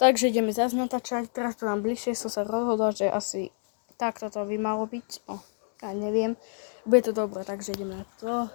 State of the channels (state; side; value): silent; right; 59 dB below the other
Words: ideme zase natáčať, teraz to mám bližšie, som sa rozhodla, že asi takto to by malo byť. No, ja neviem, bude to dobré, takže ideme na to.